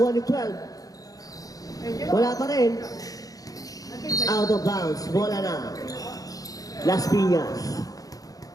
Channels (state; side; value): late; right; 0.17 ms